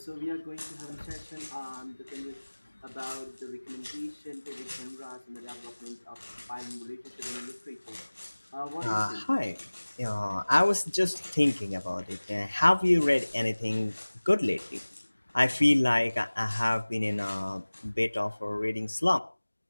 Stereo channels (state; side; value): inverted; both; correlation -1.00